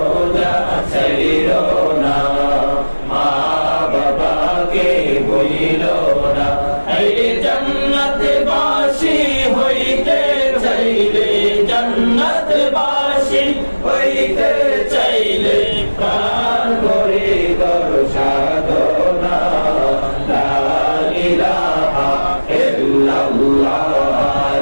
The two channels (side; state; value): both; inverted; correlation -1.00